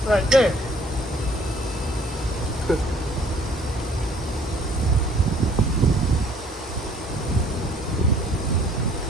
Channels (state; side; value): normal; both; correlation 0.58